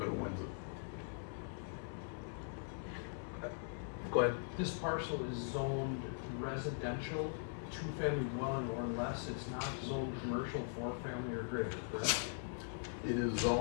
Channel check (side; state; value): right; silent; 50 dB below the other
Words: bidder wins it. Go ahead. This parcel is zoned residential, 2-family dwelling or less. It's not zoned commercial, 4-family or greater, correct? It is